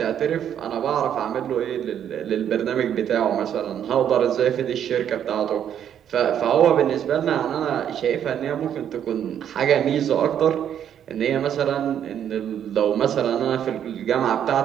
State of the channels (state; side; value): quieter; left; 9.5 dB